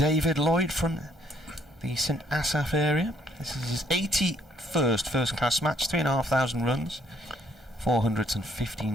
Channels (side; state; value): both; normal; correlation 0.67